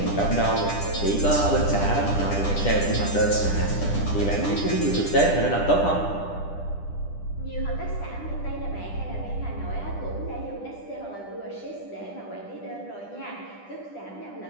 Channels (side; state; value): right; late; 10 ms